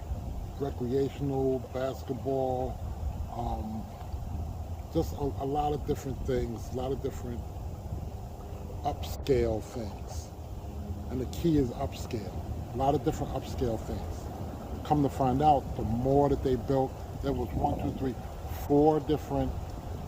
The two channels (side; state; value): both; identical; correlation 1.00